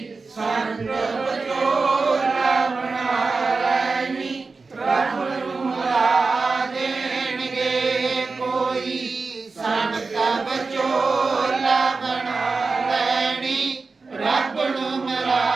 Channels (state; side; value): quieter; left; 4.2 dB